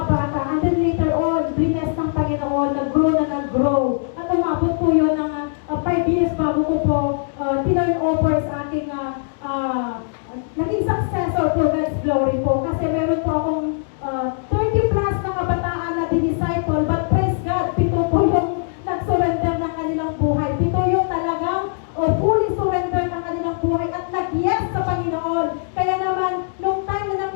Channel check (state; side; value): silent; right; digital silence